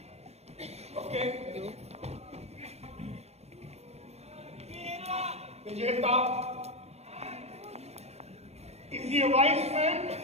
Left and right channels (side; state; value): left; late; 0.31 ms